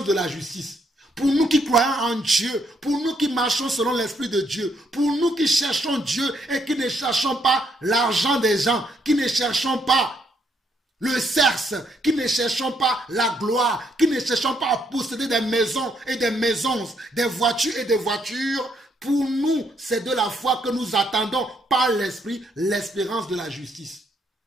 de la justice. Pour nous qui croyons en Dieu, pour nous qui marchons selon l'Esprit de Dieu, pour nous qui cherchons Dieu et qui ne cherchons pas l'argent des gens, qui ne cherchons pas le sexe, qui ne cherchons pas la gloire, qui ne cherchons pas à posséder des maisons et des maisons, des voitures et des voitures. Pour nous, c'est de la foi que nous attendons par l'Esprit l'espérance de la justice.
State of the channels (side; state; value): both; normal; correlation 0.73